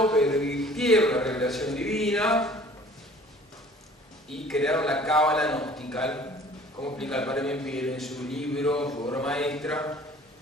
pervirtieron la revelación divina y crearon la cábala gnostica, como explica el padre Membiel en su libro, su obra maestra,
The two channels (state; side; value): normal; both; correlation 0.50